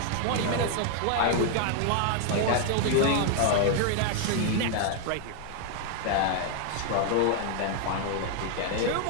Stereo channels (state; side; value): different; both; correlation 0.00